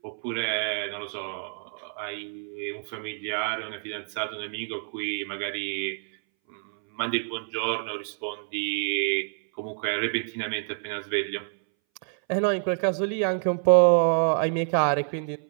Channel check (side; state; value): left; silent; 60 dB below the other